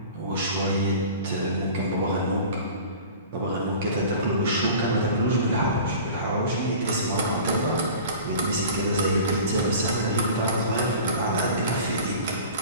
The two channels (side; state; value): both; inverted; correlation -0.40